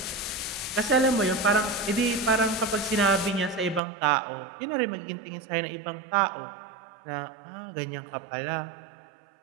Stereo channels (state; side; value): drops out; left; at 3.8 s